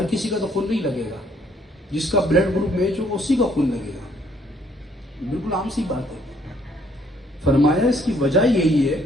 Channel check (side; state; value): both; normal; correlation 0.65